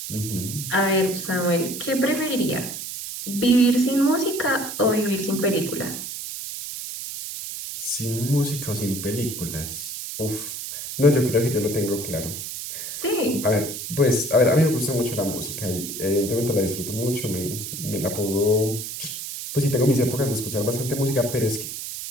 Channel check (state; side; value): noise; right; hiss, 7 dB below the sound